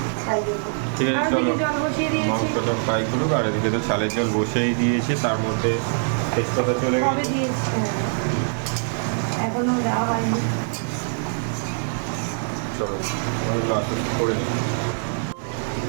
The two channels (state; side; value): silent; left; digital silence